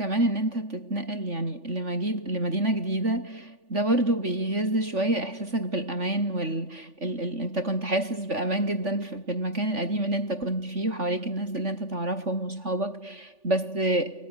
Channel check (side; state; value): left; late; 3.5 ms